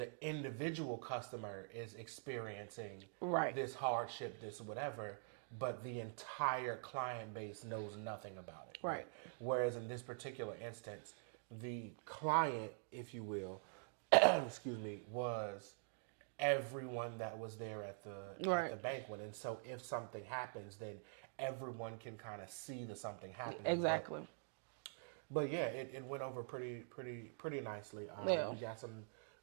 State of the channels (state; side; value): silent; left; digital silence